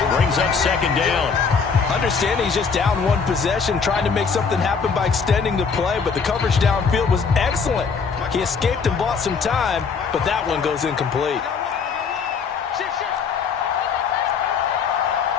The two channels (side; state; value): right; quieter; 5.6 dB